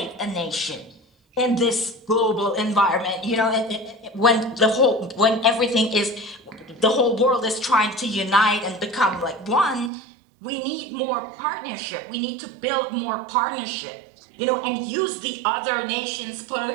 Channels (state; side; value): drops out; left; at 9.9 s